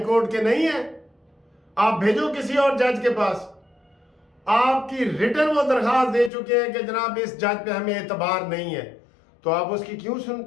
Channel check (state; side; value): drops out; right; at 6.3 s